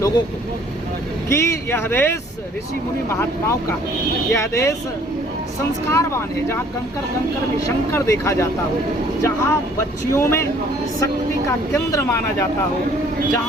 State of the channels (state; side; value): normal; both; correlation 0.57